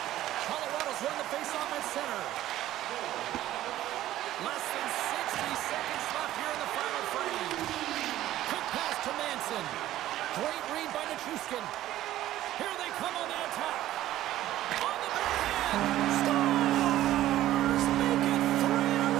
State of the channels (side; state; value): left; quieter; 14.0 dB